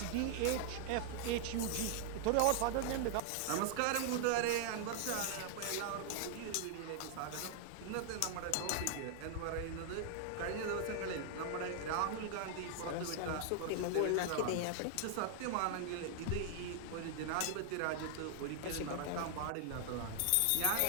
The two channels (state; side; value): different; both; correlation 0.00